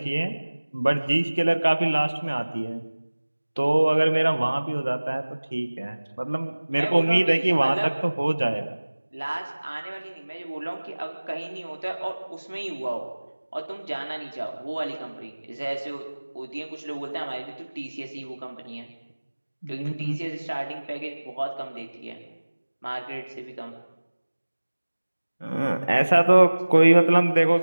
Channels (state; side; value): inverted; both; correlation -1.00